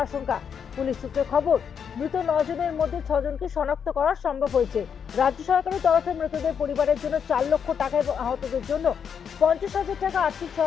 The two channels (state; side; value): quieter; right; 7.3 dB